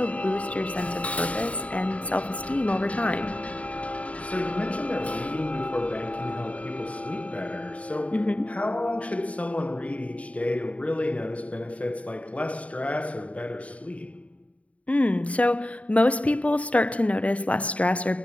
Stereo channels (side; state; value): right; late; 0.067 ms